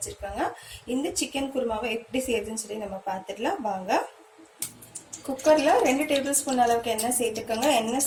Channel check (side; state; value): both; identical; correlation 1.00